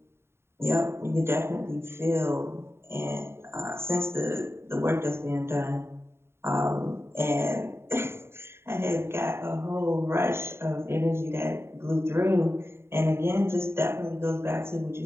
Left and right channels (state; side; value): late; left; 0.12 ms